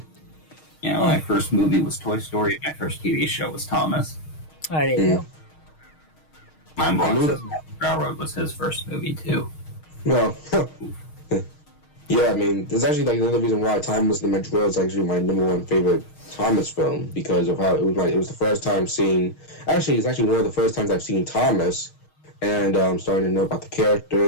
My first movie was Toy Story. My first TV show was Thomas. There you go. My boss says Railroad was his first movie too. Well, yeah, I mean, there's actually like another reason why Thomas and the Magic World is actually my #1 favorite Thomas film, because of how it was the first time seeing. Actually, it's actually one of the first times I've seen Thomas, and starting to know about the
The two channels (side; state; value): right; late; 6.4 ms